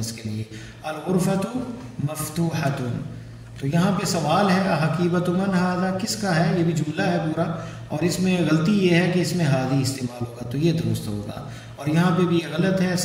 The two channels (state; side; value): identical; both; correlation 1.00